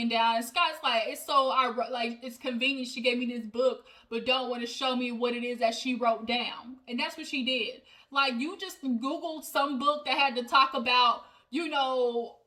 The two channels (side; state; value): both; identical; correlation 1.00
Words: down. And Scott's like, it's convenient she gave me this book, but don't want to show me what it is that she wrote down. And that's what she did. Like, you just Googled some book that had to talk about,